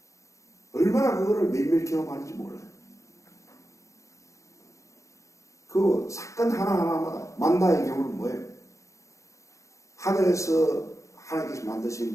얼마나 그거를 매일매일 경험하는지 몰라요. 그 사건 하나하나마다 만나의 경우는 뭐예요? 하늘에서 하나님께서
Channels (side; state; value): right; late; 0.15 ms